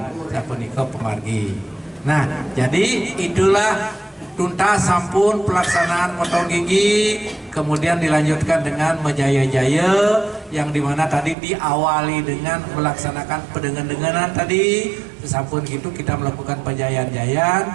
sapunika pemargi. Nah, jadi itulah tuntas sampun pelaksanaan potong gigi, kemudian dilanjutkan dengan menjaya-jaya yang dimana tadi diawali dengan melaksanakan pendengan-denganan tadi. Sampun gitu kita melakukan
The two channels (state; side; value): drops out; left; at 11.4 s